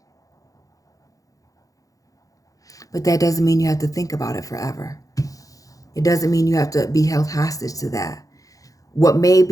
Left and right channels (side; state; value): right; late; 0.17 ms